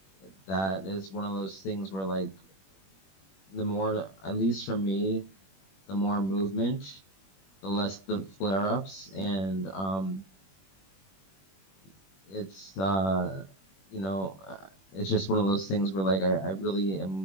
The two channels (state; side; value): late; right; 21 ms